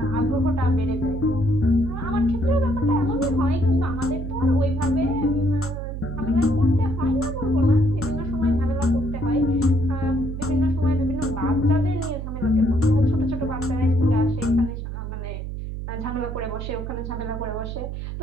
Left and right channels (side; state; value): right; noise; hum, 6 dB below the sound